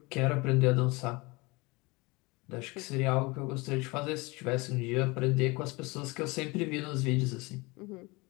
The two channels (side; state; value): right; quieter; 25.0 dB